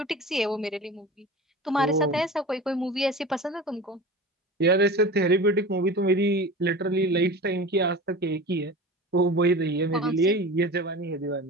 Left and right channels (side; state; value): both; normal; correlation 0.34